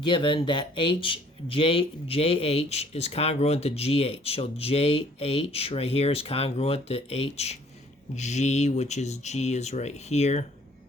that JH is congruent to GH. So JH right here is congruent to HG, which is G is right here.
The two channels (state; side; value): normal; both; correlation 0.58